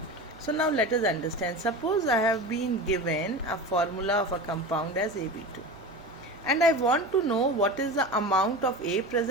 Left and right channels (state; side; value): normal; both; correlation 0.29